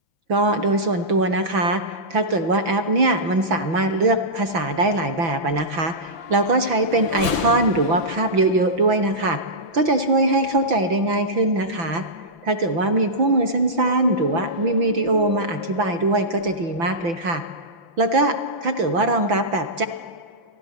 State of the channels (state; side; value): late; left; 6.0 ms